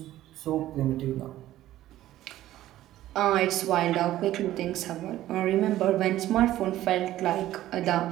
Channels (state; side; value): quieter; left; 14.1 dB